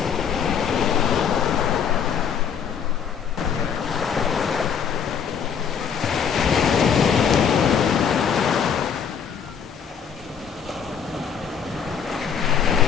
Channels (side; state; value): right; quieter; 7.4 dB